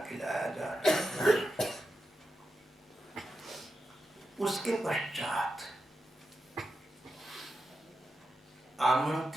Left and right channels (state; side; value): normal; both; correlation 0.88